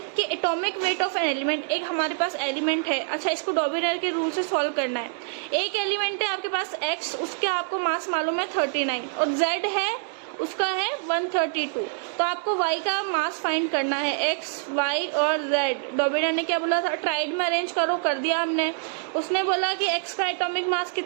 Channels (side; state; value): left; silent; digital silence